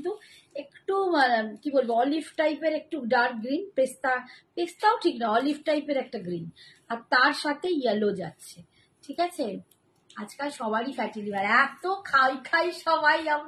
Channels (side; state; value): both; identical; correlation 1.00